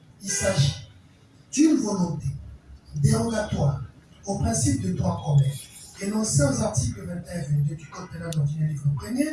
Il s'agit d'une volonté dérogatoire au principe de droit commun énoncé aux articles 21 et 22 du Code pénal ordinaire livre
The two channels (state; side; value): identical; both; correlation 1.00